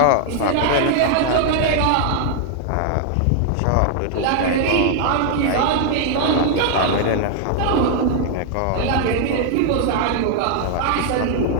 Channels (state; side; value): different; both; correlation 0.00